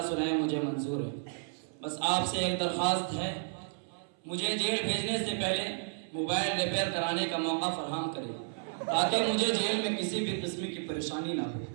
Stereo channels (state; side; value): silent; left; 56 dB below the other